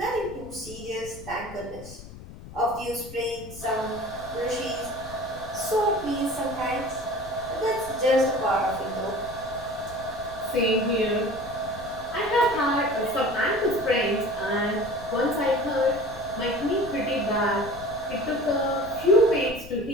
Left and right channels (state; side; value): noise; left; rumble, 16 dB below the sound